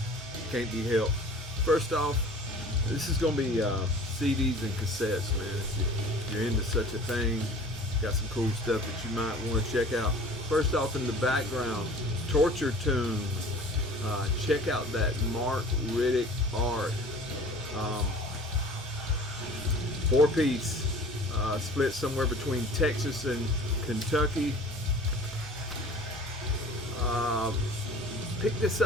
Can't be helped. First off, this is going to be CDs and cassettes, man. If you're into such a thing, got some cool stuff that you might want to check out. First off, in the background, Torture Tunes. Check out that Mark Riddick art. 4-piece, split somewhere between Texas and Kentucky. Picked this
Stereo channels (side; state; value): both; normal; correlation 0.45